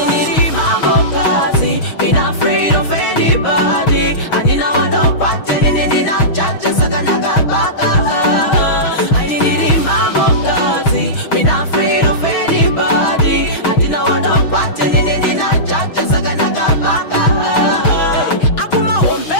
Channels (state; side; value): late; right; 6.4 ms